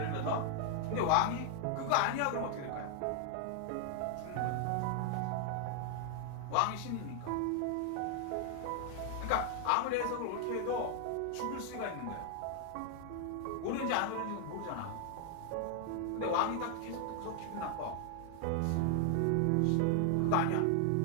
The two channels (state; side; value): different; both; correlation 0.00